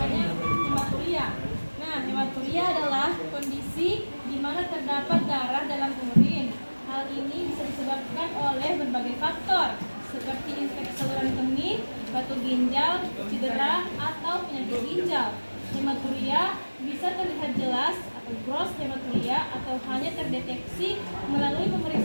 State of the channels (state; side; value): inverted; both; correlation -1.00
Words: hematuria. Nah, hematuria adalah kondisi di mana terdapat darah dalam urin. Hal ini bisa disebabkan oleh berbagai faktor seperti infeksi saluran kemih, batu ginjal, cedera, atau penyakit ginjal. Hematuria bisa terlihat jelas atau gross hematuria atau hanya terdeteksi melalui